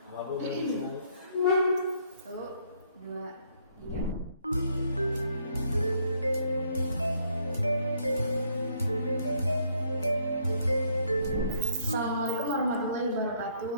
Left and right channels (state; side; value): inverted; both; correlation -0.69